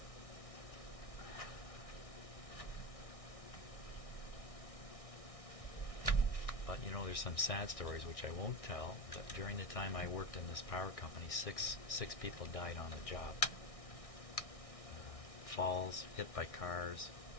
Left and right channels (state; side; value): late; right; 1.6 ms